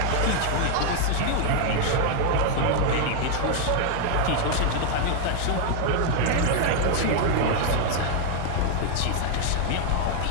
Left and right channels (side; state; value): both; different; correlation 0.00